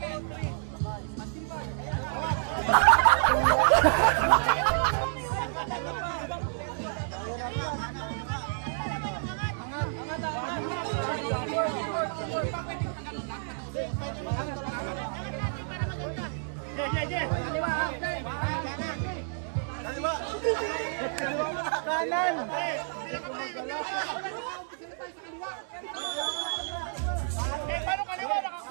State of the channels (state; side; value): silent; left; digital silence